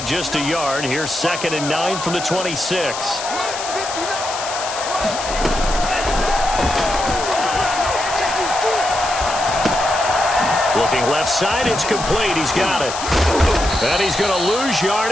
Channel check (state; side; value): noise; left; hiss, 8 dB below the sound